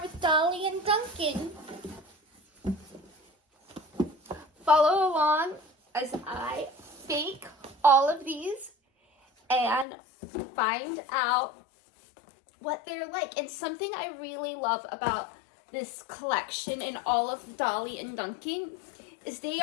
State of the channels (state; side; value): drops out; right; at 9.9 s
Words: with Dolly and Duncan. Follow along as I bake all of these and find out what they're like. And something I really love about this collection and all of Dolly and Duncan is they